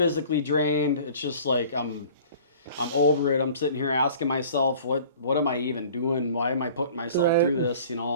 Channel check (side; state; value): both; inverted; correlation -0.48